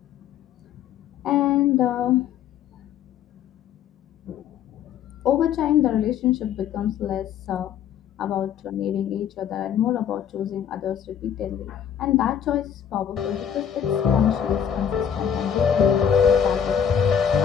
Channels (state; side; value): quieter; right; 8.6 dB